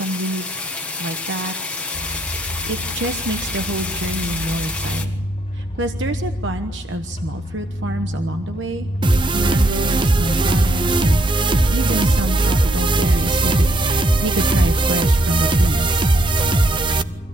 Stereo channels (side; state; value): both; normal; correlation 0.72